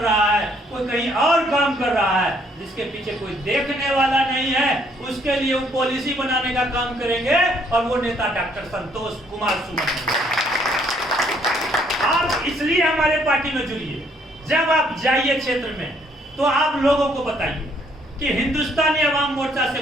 रहा है, कोई कहीं और काम कर रहा है, जिसके पीछे कोई देखने वाला नहीं है, उसके लिए वो पॉलिसी बनाने का काम करेंगे और वो नेता डॉक्टर संतोष कुमार सुमन। आप इसलिए हमारे पार्टी में जुड़िए। जब आप जाइए क्षेत्र में तो आप लोगों को बताइए कि हिंदुस्तानी अवाम मोर्चा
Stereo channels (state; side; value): normal; both; correlation 0.66